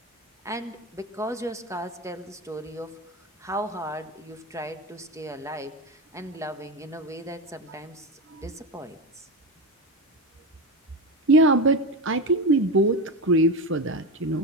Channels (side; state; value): both; normal; correlation 0.18